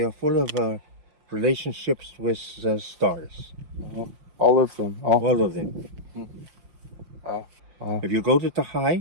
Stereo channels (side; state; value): left; late; 5.7 ms